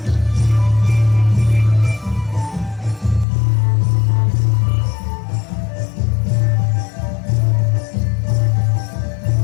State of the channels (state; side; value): drops out; right; at 3.2 s